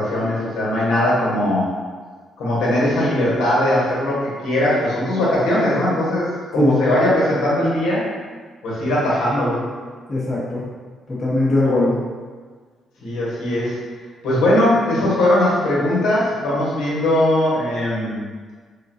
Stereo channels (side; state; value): both; normal; correlation 0.72